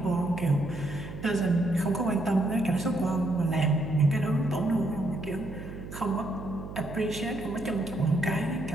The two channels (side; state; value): right; noise; hum, 11 dB below the sound